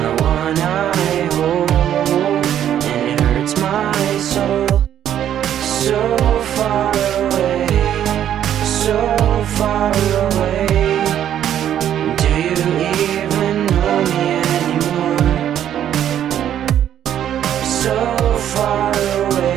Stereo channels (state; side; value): quieter; left; 10.5 dB